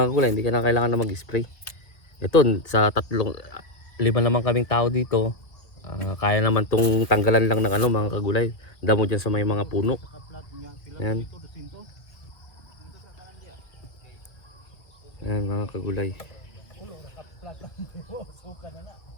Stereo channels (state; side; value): late; right; 1.9 ms